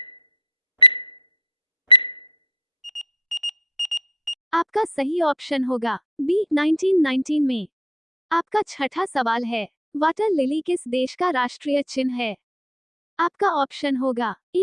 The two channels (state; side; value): normal; both; correlation 0.50